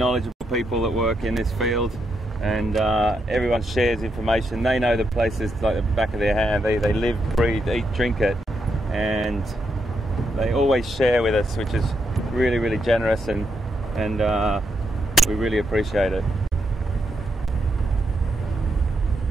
people that work in this field, and everyone shares information. They know the places like the back of their hand. They live, breathe, eat, drink it, and they always share with us, which is really, really generous, and we really appreciate it.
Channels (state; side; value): normal; both; correlation 0.81